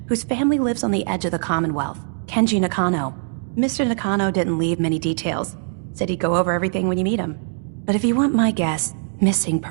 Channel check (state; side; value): silent; left; digital silence